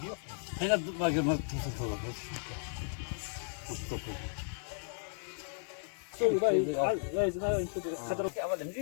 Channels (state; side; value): silent; right; digital silence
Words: Einer war gemacht, das ist toll. Das ist top. So, لا زنا انت خضر اول